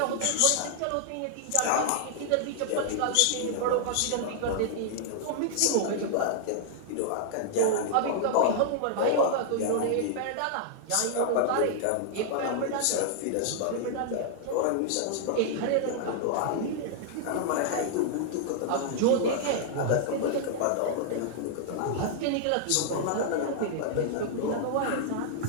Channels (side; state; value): both; different; correlation -0.01